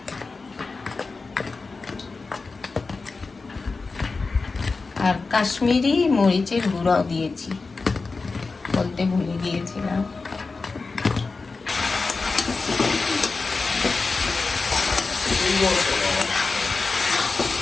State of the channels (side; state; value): right; quieter; 4.1 dB